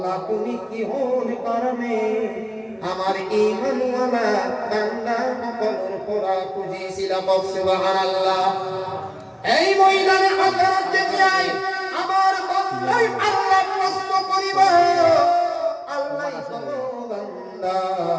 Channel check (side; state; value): both; identical; correlation 1.00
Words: তুমি কি হন কারণে আমার ঈমানওয়ালা বান্দা সকলের পড়া খুঁজিছিলা সুবহানাল্লাহ এই ময়দানে হাজার দেখিয়াই আমার বান্দাই আল্লাহ প্রশ্ন করিব আল্লাহ বলো বান্দা